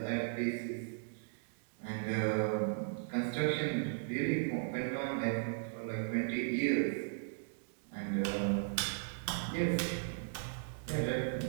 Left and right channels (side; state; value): left; silent; digital silence